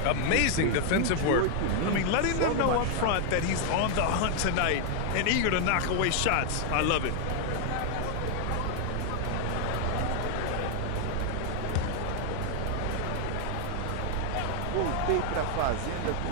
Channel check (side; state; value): both; different; correlation 0.00